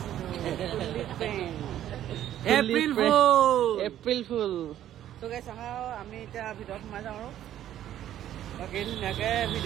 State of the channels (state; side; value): quieter; left; 11.8 dB